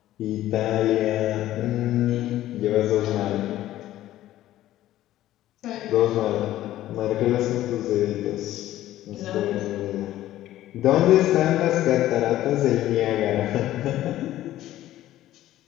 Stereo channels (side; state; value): right; quieter; 14.1 dB